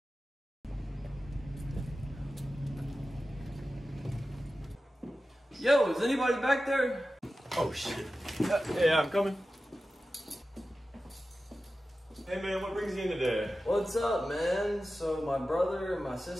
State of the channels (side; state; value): both; normal; correlation 0.94